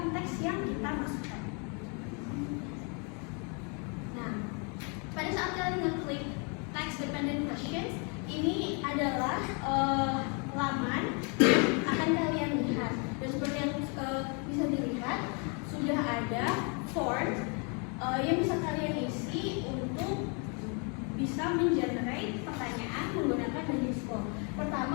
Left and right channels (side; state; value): right; quieter; 36.0 dB